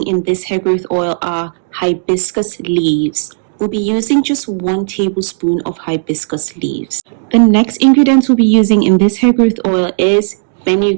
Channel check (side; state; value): left; silent; 71 dB below the other